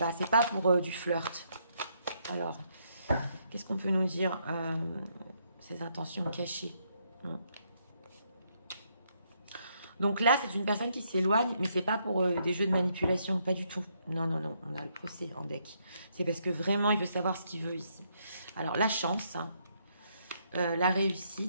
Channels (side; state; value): both; inverted; correlation -0.74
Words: c'est pas pour du flirt. Alors, qu'est-ce qu'on peut nous dire? Ses intentions cachées. Donc là, c'est une personne qui s'éloigne, mais c'est pas pour des jeux de manipulation, pas du tout. Non, non, non, on a le procès en deck. C'est parce que vraiment, il veut savoir ce qu'il veut ici. Alors, la chance, hein, la